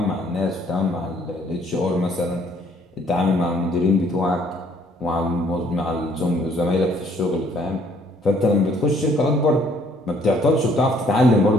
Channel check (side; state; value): both; normal; correlation 0.63